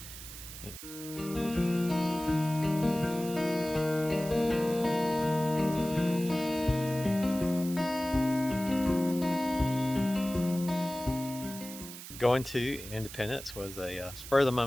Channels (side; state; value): right; noise; hiss, 12 dB below the sound